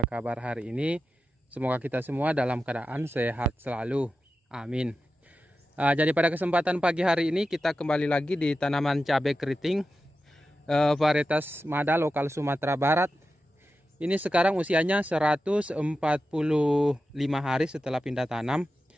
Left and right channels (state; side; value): normal; both; correlation 0.91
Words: hari ini? Semoga kita semua dalam keadaan sehat selalu. Amin. Jadi pada kesempatan pagi hari ini kita kembali lagi di tanaman cabai keriting varietas Mada lokal Sumatera Barat. Ini sekarang usianya 145 hari setelah pindah tanam.